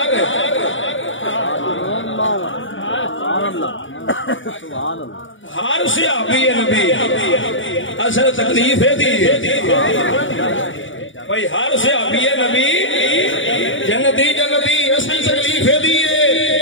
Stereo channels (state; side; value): late; right; 0.56 ms